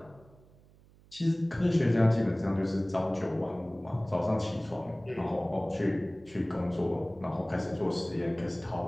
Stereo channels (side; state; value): right; noise; hum, 27 dB below the sound